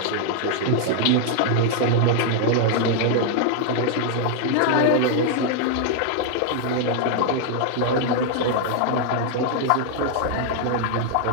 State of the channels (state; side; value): different; both; correlation 0.00